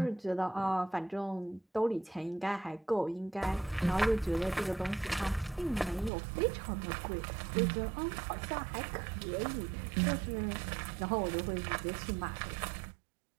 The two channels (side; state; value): left; drops out; at 6.1 s